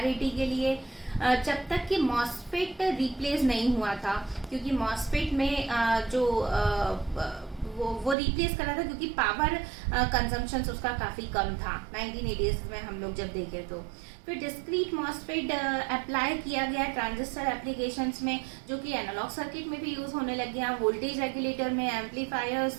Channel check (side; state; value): left; drops out; at 8.2 s